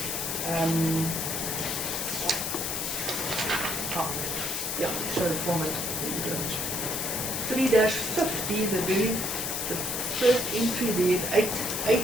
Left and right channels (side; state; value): left; noise; hiss, 2 dB below the sound